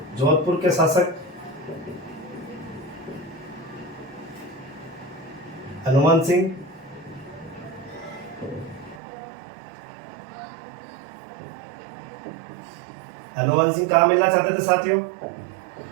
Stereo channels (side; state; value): left; drops out; at 9.0 s